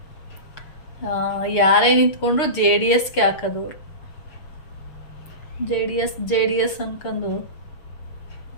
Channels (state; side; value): late; right; 6.6 ms